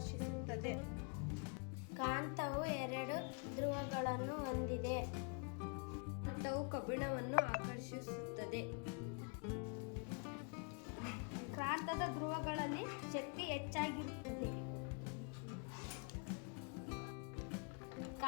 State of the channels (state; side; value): quieter; right; 37.3 dB